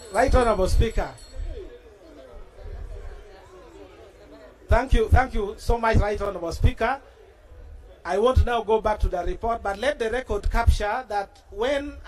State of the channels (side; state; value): both; identical; correlation 1.00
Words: Right Honorable Speaker. Thank you so much, Right Honorable Speaker. I want to now go back to the report, but let the record capture that when